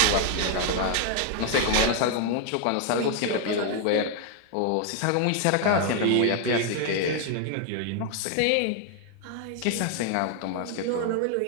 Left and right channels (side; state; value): both; different; correlation 0.00